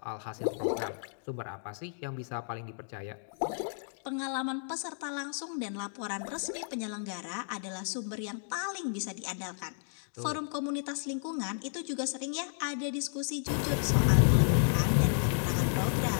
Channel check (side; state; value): right; silent; digital silence